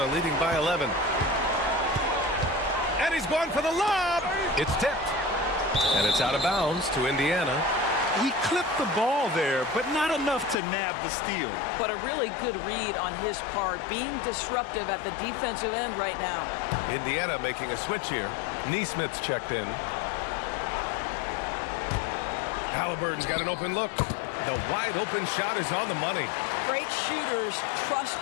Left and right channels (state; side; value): drops out; right; at 10.6 s